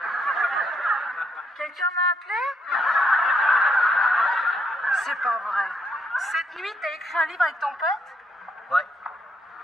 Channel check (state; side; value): normal; both; correlation 0.73